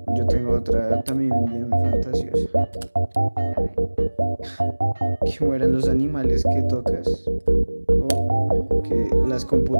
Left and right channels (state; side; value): inverted; both; correlation -1.00